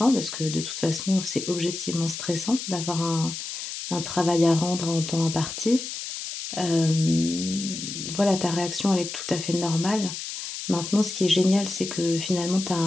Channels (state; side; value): noise; left; hiss, 7 dB below the sound